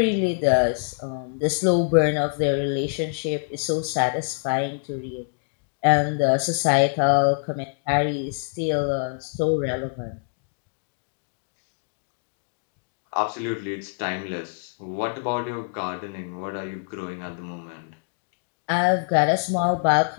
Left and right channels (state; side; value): silent; right; digital silence